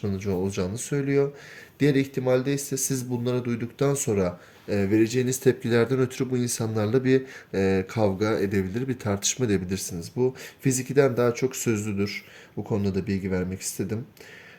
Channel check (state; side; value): identical; both; correlation 1.00